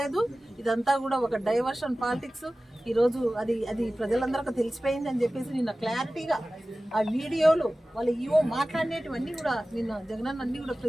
ఇదంతా కూడా ఒక డైవర్షన్ పాలిటిక్స్. ఈరోజు అది ప్రజలందరికీ తెలిసిపోయింది అని చెప్పేసి నిన్న క్లారిటీగా ఆ వీడియోలు వాళ్ళు ఈవో మాట్లాడినటువన్నీ కూడా నిన్న జగనన్న అన్ని కూడా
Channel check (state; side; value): normal; both; correlation 0.96